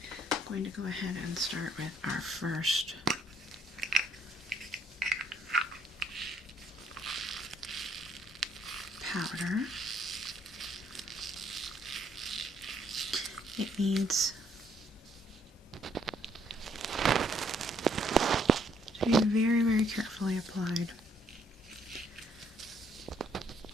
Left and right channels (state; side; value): normal; both; correlation 0.67